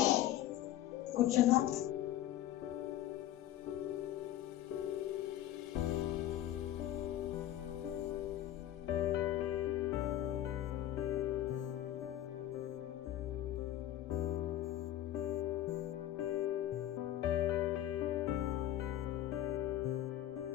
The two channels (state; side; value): quieter; right; 12.8 dB